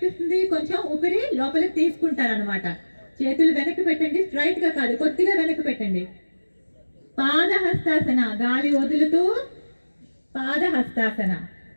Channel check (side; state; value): both; inverted; correlation -1.00